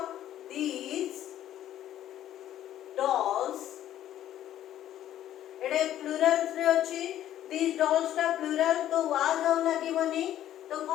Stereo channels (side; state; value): right; quieter; 12.0 dB